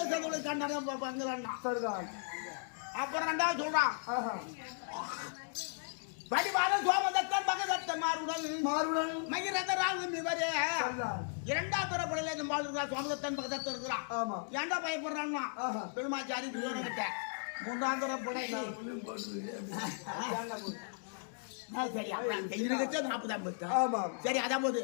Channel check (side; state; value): right; silent; digital silence